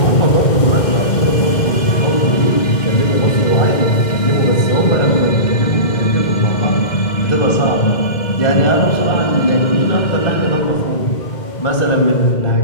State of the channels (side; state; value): right; late; 2.1 ms